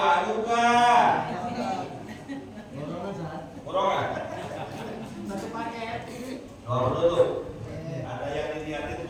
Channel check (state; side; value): identical; both; correlation 1.00